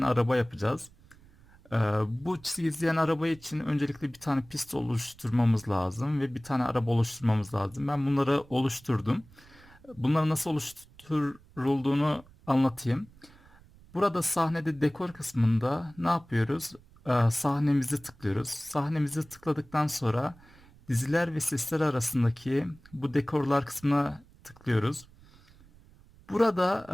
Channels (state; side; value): noise; right; rumble, 25 dB below the sound